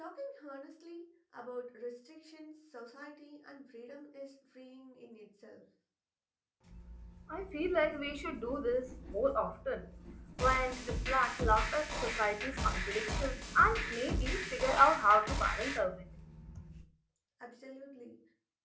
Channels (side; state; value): both; identical; correlation 1.00